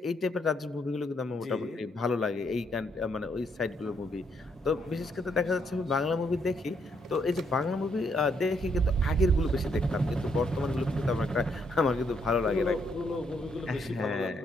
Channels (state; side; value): normal; both; correlation 0.74